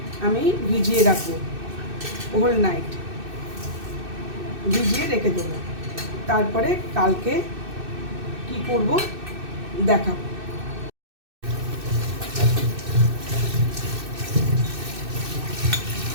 আমি ভিজিয়ে রাখবো, হোল নাইট ভিজিয়ে রেখে দেবো। তারপরে কালকে কি করব দেখাবো।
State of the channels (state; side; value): late; left; 2.6 ms